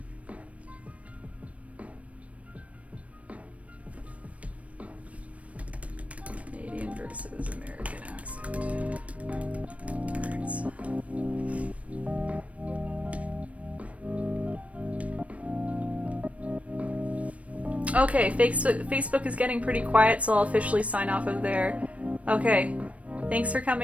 Canadian versus American accent. Words. Okay, Facebook is getting pretty quiet, so I'll officially sign off of there. Okay, thanks for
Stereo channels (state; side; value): late; left; 0.065 ms